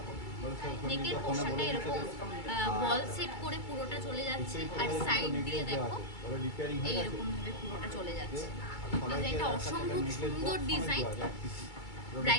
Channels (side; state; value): right; late; 2.3 ms